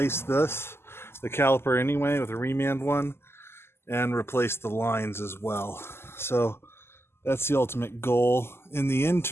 the caliper anyway, with a remand one, and replace the lines as well. So that's the ultimate goal. In the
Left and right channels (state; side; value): late; right; 0.12 ms